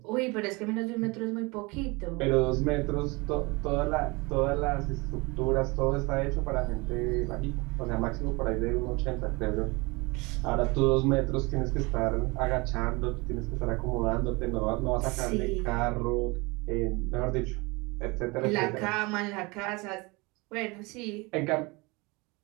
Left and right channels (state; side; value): quieter; left; 25.9 dB